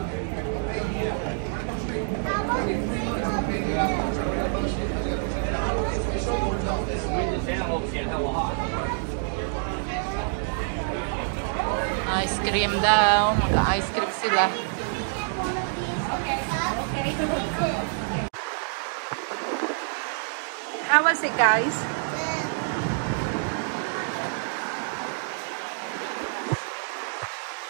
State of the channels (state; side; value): silent; left; 60 dB below the other